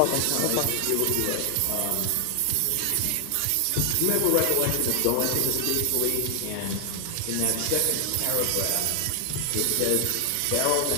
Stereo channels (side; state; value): both; different; correlation 0.00